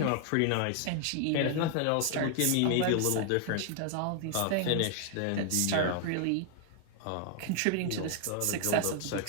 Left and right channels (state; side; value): different; both; correlation 0.00